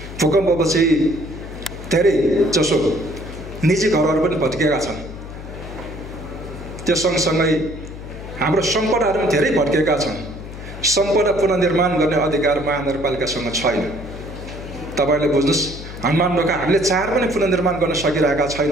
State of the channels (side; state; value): left; noise; hum, 12 dB below the sound